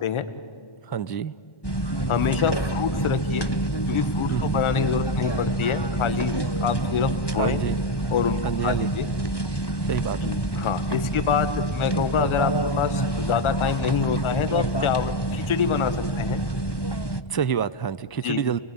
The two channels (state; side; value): late; right; 1.1 ms